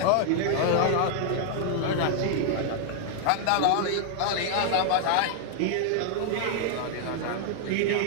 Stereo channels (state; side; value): different; both; correlation 0.00